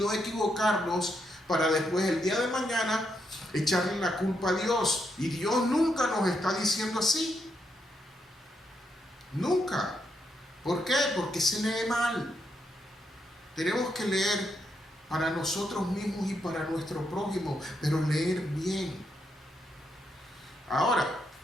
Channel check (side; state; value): both; normal; correlation 0.80